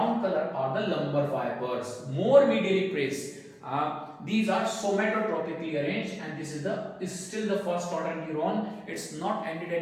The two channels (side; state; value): both; identical; correlation 1.00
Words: color are the lumbar fibers, more medially placed. These are somatotropically arranged, and this is still the first order neuron. It's not ended